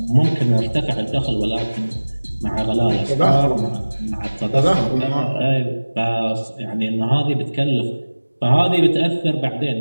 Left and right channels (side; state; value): both; inverted; correlation -1.00